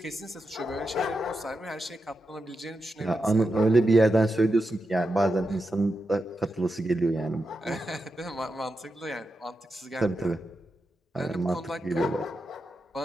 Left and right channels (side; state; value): both; normal; correlation 0.88